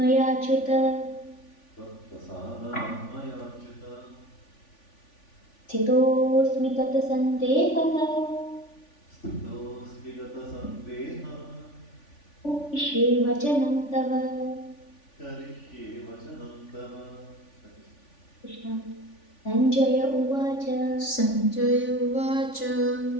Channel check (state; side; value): late; right; 3.5 ms